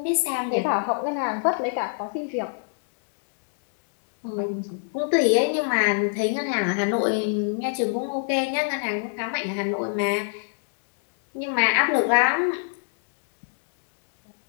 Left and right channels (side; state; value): right; silent; digital silence